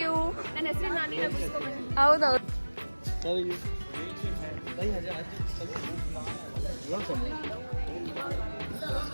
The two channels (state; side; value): inverted; both; correlation -1.00